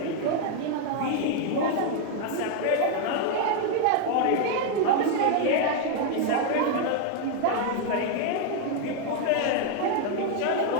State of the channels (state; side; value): different; both; correlation 0.00